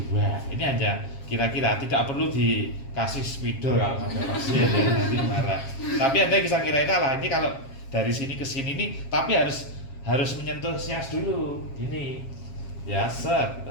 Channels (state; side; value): late; right; 7.4 ms